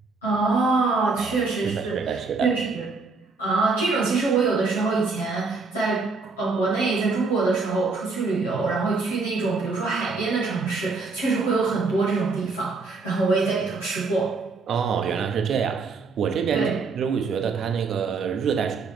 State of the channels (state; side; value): quieter; left; 4.2 dB